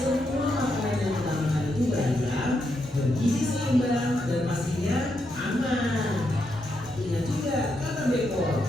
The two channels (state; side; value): normal; both; correlation 0.81